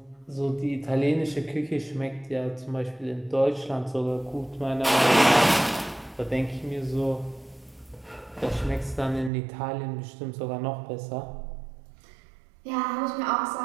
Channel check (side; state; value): left; drops out; at 9.3 s